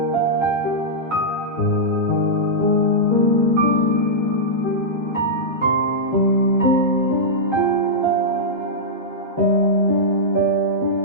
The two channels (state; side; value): normal; both; correlation -0.10